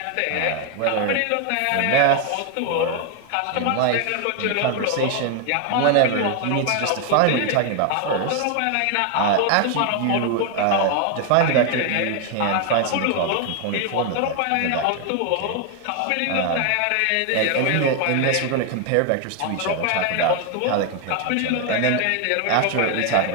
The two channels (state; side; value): different; both; correlation 0.01